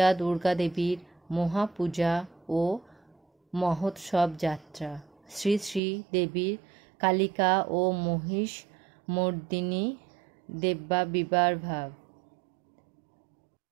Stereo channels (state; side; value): drops out; left; at 5.8 s